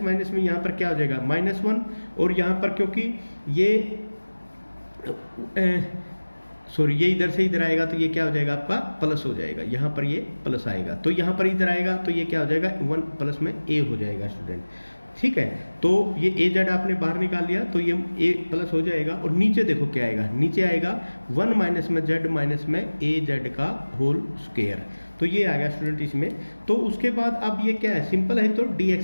माइनस में यहाँ पर क्या हो जाएगा -1, और यहाँ पर क्योंकि ये सॉरी, ये इधर से इधर आएगा तो ये क्या हो जाएगा आपका प्लस हो जाएगा, यहाँ पर ये प्लस आएगा, तो यहाँ पर इधर आएगा तो ये क्या हो जाएगा 1 प्लस में ए हो जाएगा स्टूडेंट। ठीक है, तो ये ए जेड आपने बाहर निकाल लिया तो ये ए प्लस हो जाएगा, और नीचे देखो क्या आएगा, नीचे आएगा 1 माइनस में जेड माइनस में ए जेड का होल स्क्वायर। तो ये आ गया स्टूडेंट इसमें। तो उसके बाद अब ये क्या है, सिंपल है, तो डी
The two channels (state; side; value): inverted; both; correlation -1.00